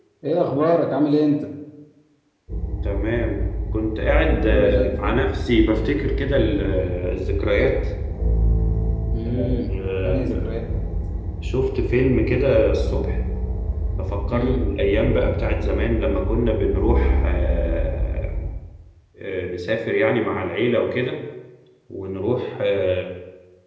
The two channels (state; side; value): identical; both; correlation 1.00